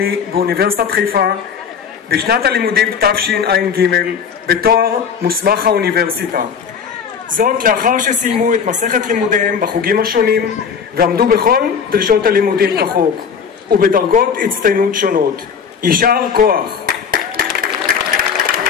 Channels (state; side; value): quieter; right; 6.7 dB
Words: באוניברסיטת חיפה בשנת הלימודים תשע"ג בתואר מוסמך האוניברסיטה. זאת לאחר שסיימו את מסכת לימודיהם בחוגים השונים ועמדו בכל דרישות הלימודים כחוק ובדרגות הצטיינות שונות. יישר כוח.